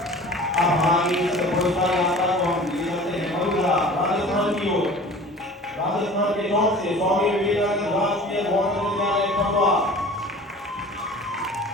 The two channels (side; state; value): both; normal; correlation 0.42